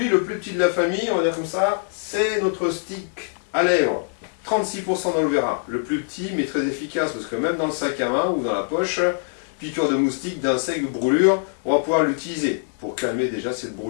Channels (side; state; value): right; silent; 63 dB below the other